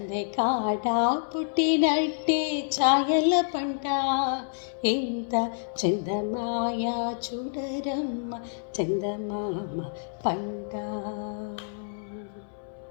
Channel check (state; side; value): silent; right; 59 dB below the other